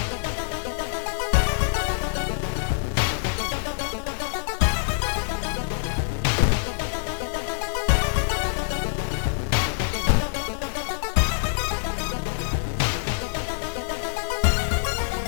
makes your stomach churn. Ooh. So we're gonna investigate. Let's ask Hana if she's interested in joining us. You knock on your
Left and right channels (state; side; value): silent; right; 62 dB below the other